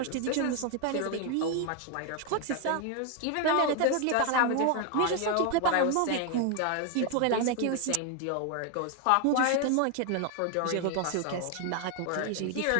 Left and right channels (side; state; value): both; different; correlation 0.01